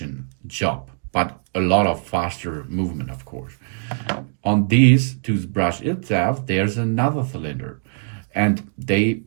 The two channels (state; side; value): silent; left; digital silence